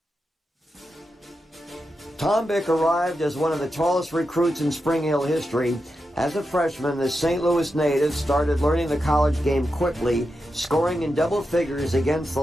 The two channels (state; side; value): normal; both; correlation 0.88